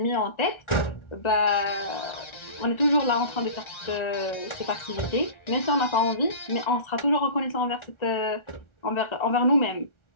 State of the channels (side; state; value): right; late; 1.4 ms